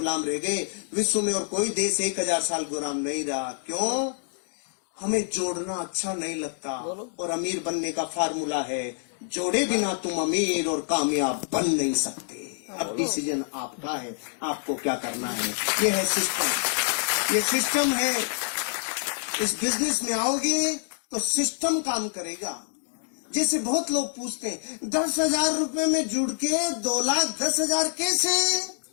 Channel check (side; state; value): right; silent; digital silence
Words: रह गए। विश्व में और कोई देश 1000 साल गुलाम नहीं रहा। क्यों? हमें जोड़ना अच्छा नहीं लगता। और अमीर बनने का फार्मूला है, जोड़े बिना तुम अमीर और कामयाब बन नहीं सकते। अब डिसीजन आपका है, आपको क्या करना है। ये है सिस्टम, ये सिस्टम है। इस बिजनेस में आओगे तो सिस्टम काम करेगा। जैसे बहुत लोग पूछते हैं 10,000 रुपए में जुड़ के 2,10,000 कैसे?